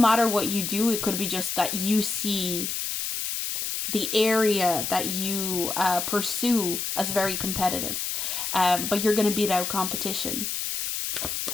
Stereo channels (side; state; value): left; noise; hiss, 2 dB below the sound